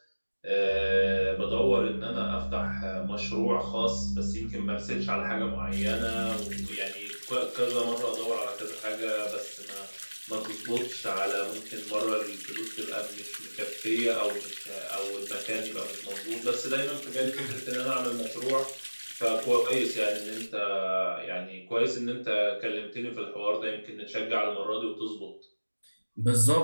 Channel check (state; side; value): inverted; both; correlation -1.00